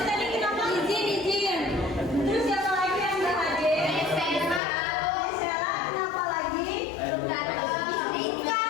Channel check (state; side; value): drops out; right; at 4.6 s